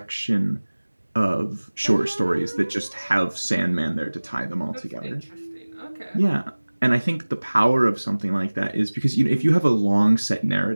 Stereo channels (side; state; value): both; inverted; correlation -1.00